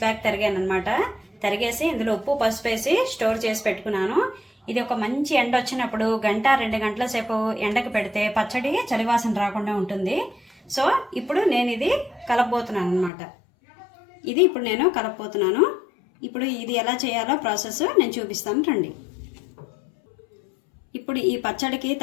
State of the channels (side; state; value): right; drops out; at 13.1 s